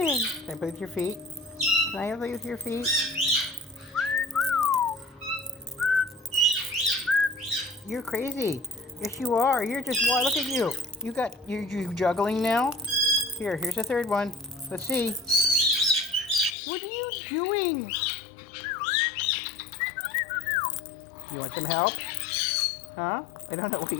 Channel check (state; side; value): drops out; right; at 16.6 s